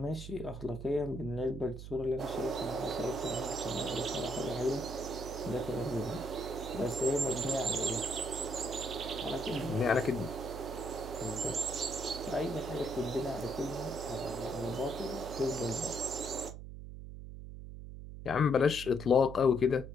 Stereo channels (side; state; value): right; noise; hum, 10 dB below the sound